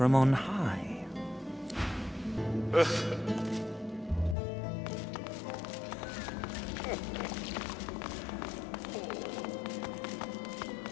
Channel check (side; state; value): right; drops out; at 4.4 s